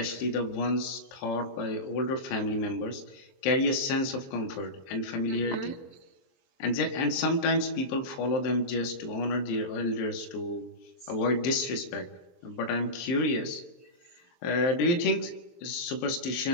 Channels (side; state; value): right; late; 23 ms